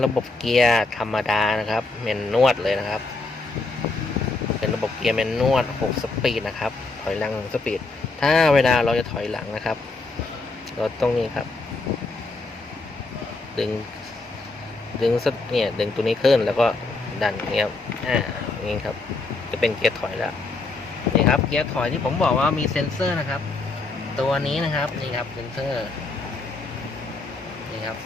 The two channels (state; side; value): quieter; right; 3.5 dB